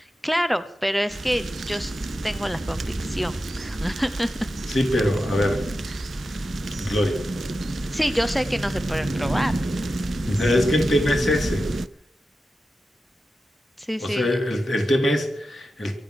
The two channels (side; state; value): both; normal; correlation 0.91